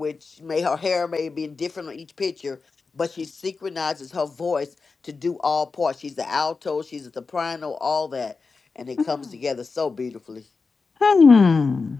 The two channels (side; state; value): right; quieter; 4.4 dB